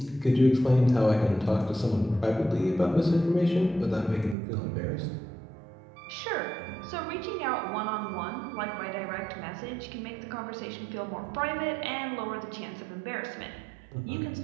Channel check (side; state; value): left; drops out; at 4.4 s